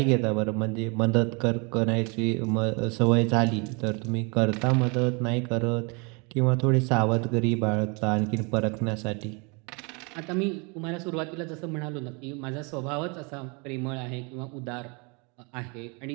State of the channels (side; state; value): left; quieter; 31.6 dB